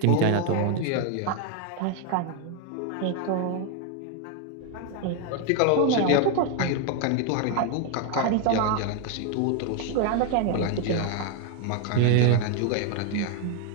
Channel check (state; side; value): different; both; correlation 0.01